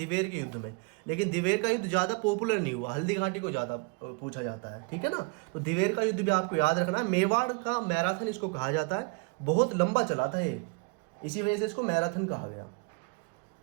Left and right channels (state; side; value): quieter; left; 30.6 dB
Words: के युद्ध में। लेकिन दिवेर का युद्ध ज्यादा पॉपुलर नहीं हुआ, हल्दी घाटी को ज्यादा पूछा जाता है, ठीक है ना। तो दिवेर का युद्ध भी आपको याद रखना है। मेवाड़ का मैराथन इसको कहा जाता है, बहुत लंबा चला था ये, इसी वजह से इसको मैराथन कहा गया,